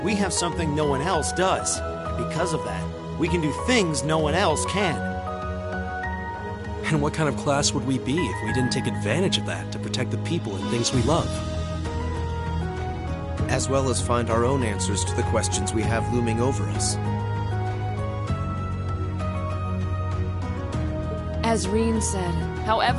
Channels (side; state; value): both; identical; correlation 1.00